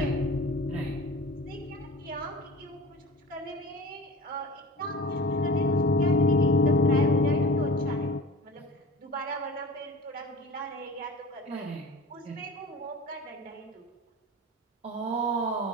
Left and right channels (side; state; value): both; normal; correlation 0.38